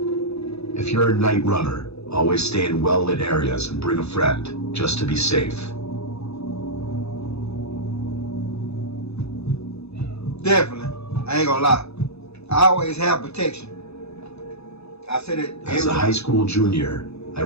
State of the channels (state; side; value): late; right; 0.79 ms